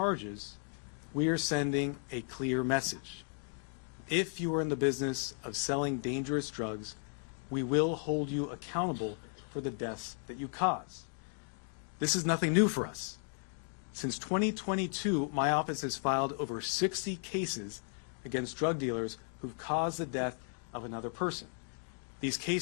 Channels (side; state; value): right; silent; 54 dB below the other